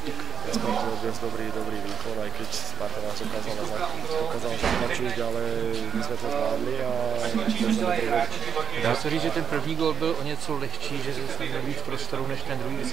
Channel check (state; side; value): quieter; left; 7.0 dB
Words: Spartu odviesť dobrý výkon, aj keď Sparta nás dokázala zatlačiť, ale my sme to zvládli a Dá se říct, že ten první gól byl o něco lehčí, že se měl víc prostoru než ten druhý, když